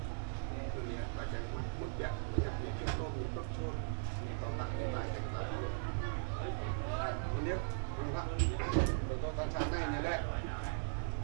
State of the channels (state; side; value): silent; left; digital silence